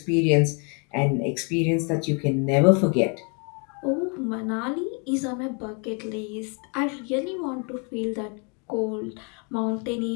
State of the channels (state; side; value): quieter; right; 36.0 dB